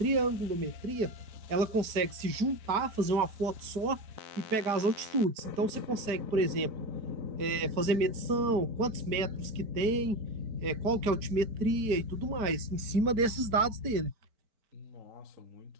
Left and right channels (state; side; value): late; left; 4.5 ms